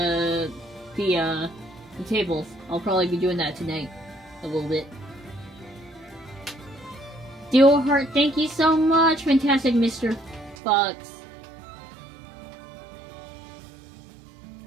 tables. I'll probably be doing that tonight, a little bit. Duolvlart, thank you so much, fantastic Mr. Fox.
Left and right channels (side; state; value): left; drops out; at 10.6 s